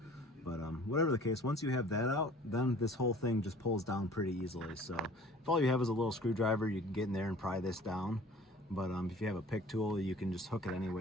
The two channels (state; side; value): normal; both; correlation 0.49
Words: But whatever the case, once you have that out, then this whole thing just pulls down pretty easily. So if all you have is a little screwdriver, you can get in there and pry this down. But if you have a pick tool, you can just hook it any